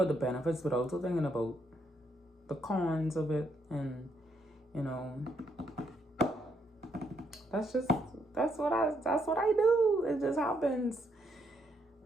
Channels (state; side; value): normal; both; correlation 0.75